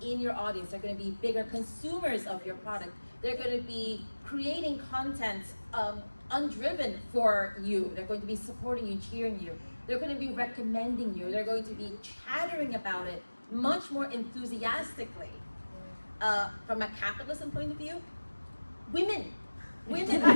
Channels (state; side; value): inverted; both; correlation -1.00